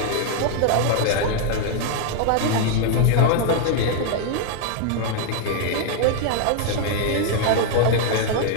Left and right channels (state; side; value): different; both; correlation 0.00